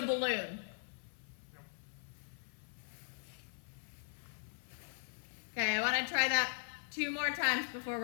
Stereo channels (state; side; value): silent; right; 51 dB below the other